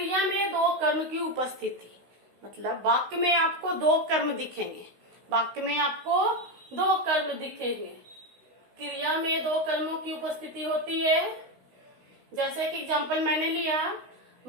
में दो कर्म की उपस्थिति, मतलब वाक्य में आपको दो कर्म दिखेंगे। वाक्य में आपको दो कर्म दिखेंगे, क्रिया में दो कर्मों की उपस्थिति होती है। जैसे कि एग्जाम्पल मैंने लिया,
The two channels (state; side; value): late; left; 16 ms